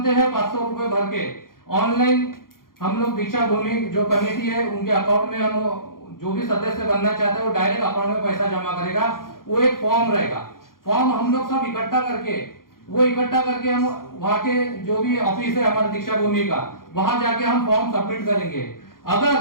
हैं 500 रुपए भर के, ऑनलाइन हम लोग दीक्षा भूमि जो कमेटी है उनके अकाउंट में, हम जो भी सदस्य बनना चाहते हैं वो डायरेक्ट अकाउंट में पैसा जमा करेगा। वो एक फॉर्म रहेगा, फॉर्म हम लोग सब इकट्ठा करके हम वहां के जो भी ऑफिस है हमारे दीक्षा भूमि का, वहां जाके हम फॉर्म सबमिट करेंगे। अगर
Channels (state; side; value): late; right; 0.91 ms